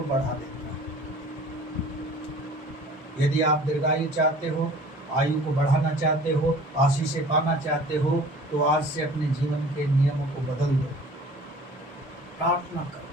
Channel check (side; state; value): both; normal; correlation 0.46